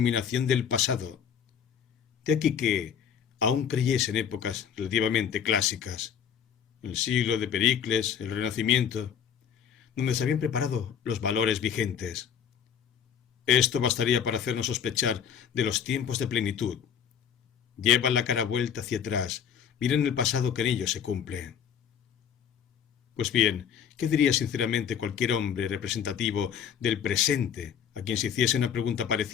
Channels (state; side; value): quieter; right; 8.2 dB